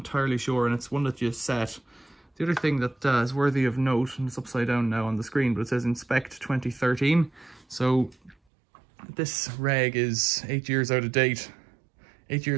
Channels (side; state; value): left; drops out; at 8.3 s